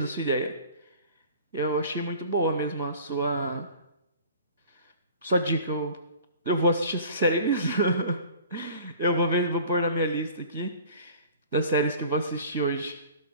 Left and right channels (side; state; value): both; inverted; correlation -0.45